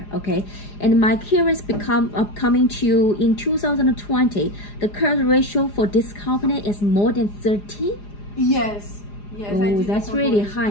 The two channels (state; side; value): late; right; 4.9 ms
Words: okay? And my curious coming to you in 2020, the current ratio for this company is more than 30? Yes. Oh, that's really